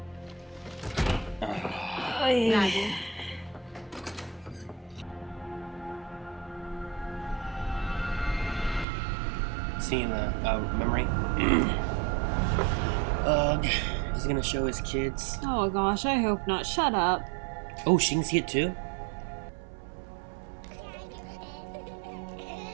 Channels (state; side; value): drops out; left; at 8.8 s